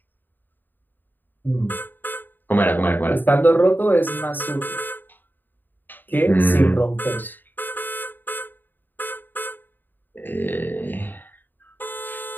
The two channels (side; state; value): right; late; 0.091 ms